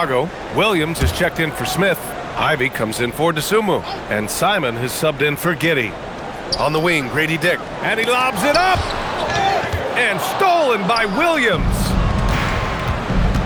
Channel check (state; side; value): identical; both; correlation 1.00